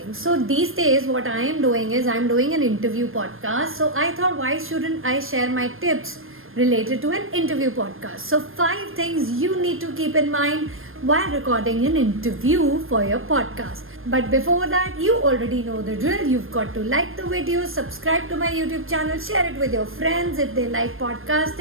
So these days what I am doing is I'm doing an interview podcast. So I thought, why shouldn't I share my tips related to an interview podcast? So 5 things you need to keep in mind while recording an interview for your podcast. But before that, you already know the drill. You've got to like the video, subscribe to my YouTube channel, share it with your friends if they like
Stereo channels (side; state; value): left; late; 0.60 ms